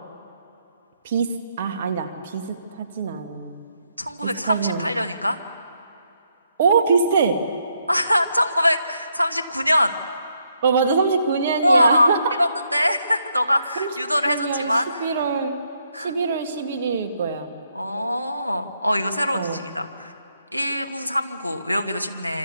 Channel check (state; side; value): inverted; both; correlation -0.76